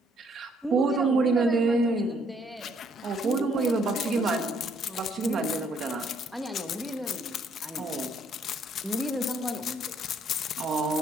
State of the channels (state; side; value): normal; both; correlation 0.67